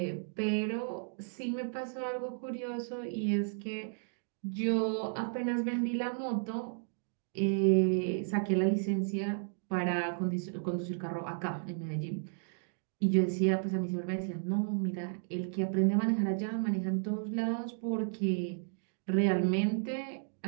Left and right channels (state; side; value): silent; left; digital silence